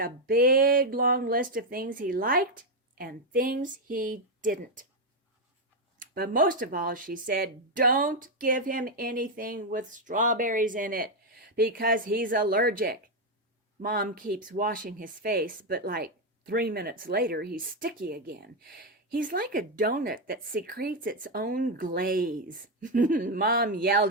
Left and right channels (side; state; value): both; normal; correlation 0.04